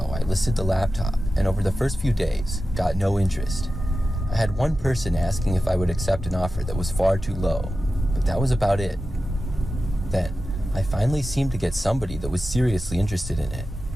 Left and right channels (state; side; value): normal; both; correlation 0.93